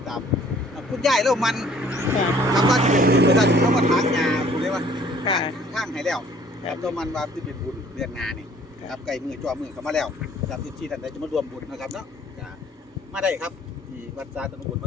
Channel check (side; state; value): both; normal; correlation 0.57